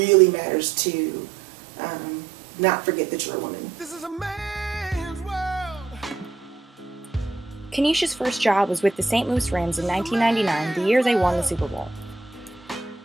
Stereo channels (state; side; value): quieter; left; 4.0 dB